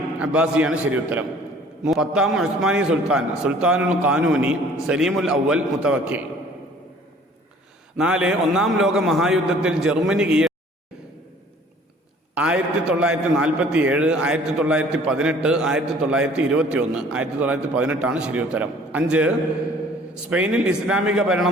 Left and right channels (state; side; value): normal; both; correlation 0.53